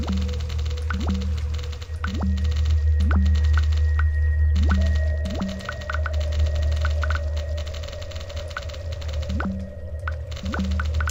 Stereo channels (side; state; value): both; identical; correlation 1.00